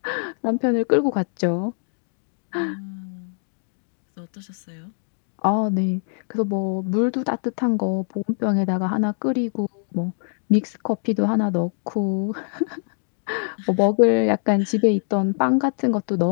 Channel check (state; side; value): silent; right; 63 dB below the other